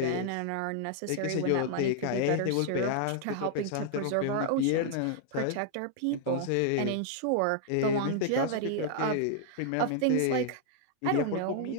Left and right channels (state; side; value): different; both; correlation -0.01